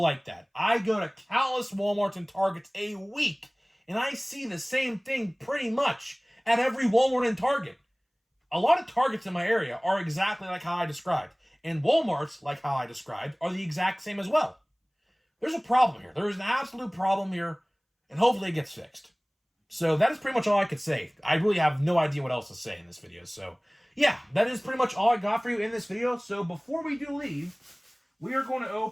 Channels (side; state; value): both; identical; correlation 1.00